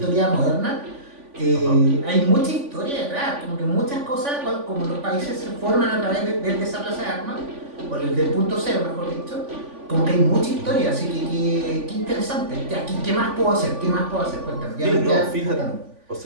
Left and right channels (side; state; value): left; late; 3.5 ms